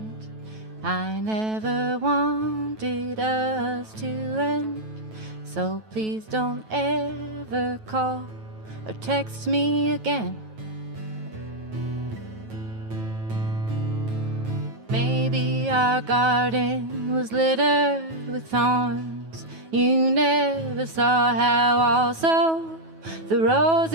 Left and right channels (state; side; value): late; left; 9.6 ms